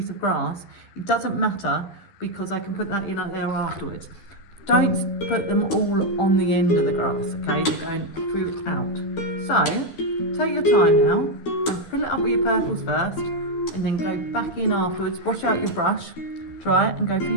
of grass, it doesn't matter, because I can put that in there afterwards. Don't put them all on the end of the grass, okay? They're going through out. So, take your time now, fill it up with your purples first, and then go back in afterwards, wash out your brush, dry it, and go for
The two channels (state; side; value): late; right; 12 ms